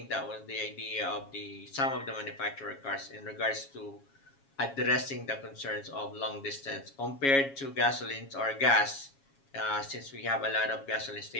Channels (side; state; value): right; late; 7.3 ms